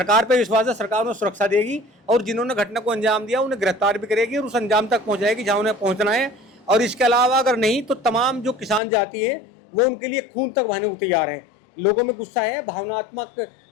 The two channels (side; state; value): right; drops out; at 8.8 s